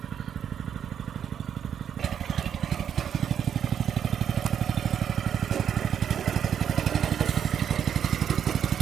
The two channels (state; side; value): quieter; left; 8.7 dB